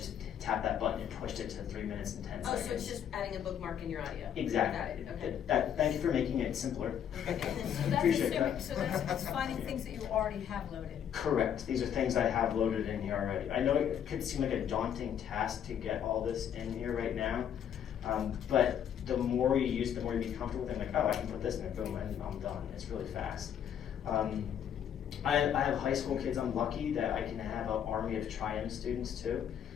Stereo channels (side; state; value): right; quieter; 9.1 dB